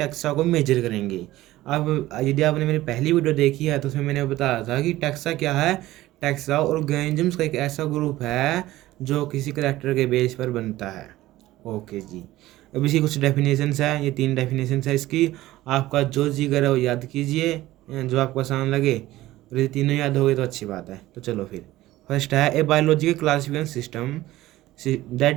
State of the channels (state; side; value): quieter; left; 16.4 dB